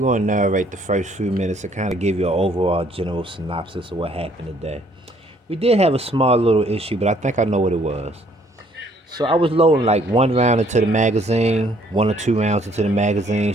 to narrate the first few minutes to kind of give you an overall general synopsis of what happened today. We did have a small little issue, but I think I know what it was. So I was loading like one round into the magazine, 1 or 2 rounds into the magazine,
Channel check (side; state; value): both; normal; correlation 0.63